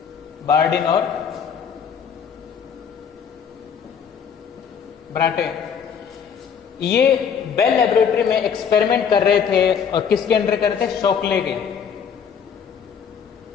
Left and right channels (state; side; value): quieter; right; 7.2 dB